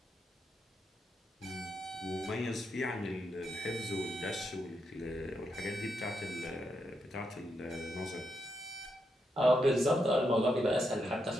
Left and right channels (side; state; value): both; normal; correlation 0.82